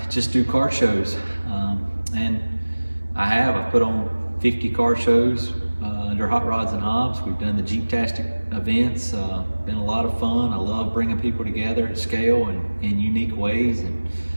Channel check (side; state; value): both; inverted; correlation -1.00